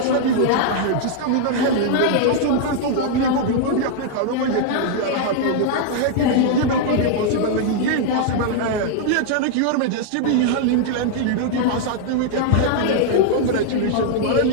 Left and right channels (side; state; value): both; different; correlation -0.01